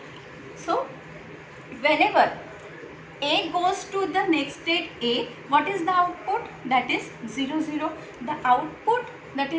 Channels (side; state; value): both; identical; correlation 1.00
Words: So whenever A goes to the next state A, what is the output? That is 0 0. The output, that